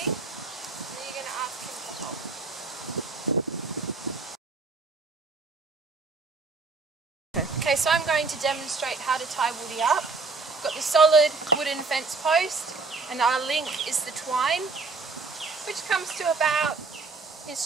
and then you're going to ask him to hold. Okay, so I'm going to demonstrate how to tie Woody up. I've got the solid wooden fence post, and our link is the twine, which comes to about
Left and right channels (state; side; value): quieter; left; 4.1 dB